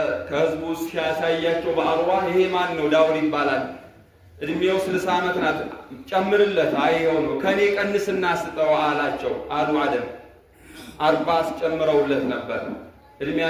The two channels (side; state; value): both; identical; correlation 1.00